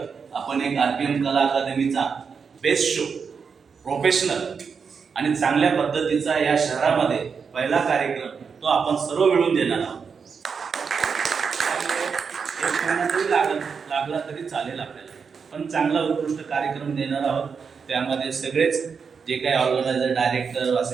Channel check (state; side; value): quieter; left; 5.9 dB